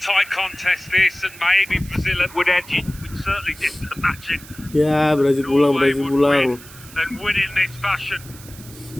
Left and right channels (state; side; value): noise; right; hiss, 19 dB below the sound